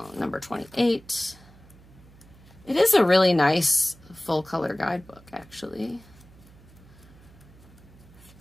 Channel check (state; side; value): noise; right; hum, 24 dB below the sound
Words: 28, it is a really nice full color guidebook, actually.